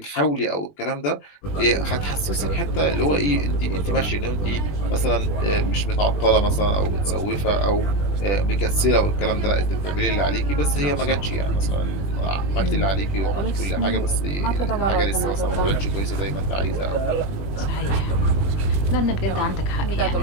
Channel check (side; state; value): right; late; 21 ms